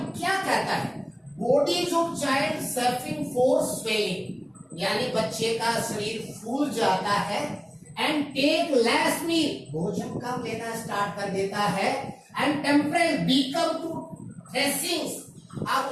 क्या कहता है? Bodies of child suffering for swelling यानी बच्चे का शरीर फूल जाता है, एंड टेक लेस मील भोजन कम लेना स्टार्ट कर देता है, एंड टेम्परेचर बिकम टू थ्रेसिंग्स अब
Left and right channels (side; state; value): both; identical; correlation 1.00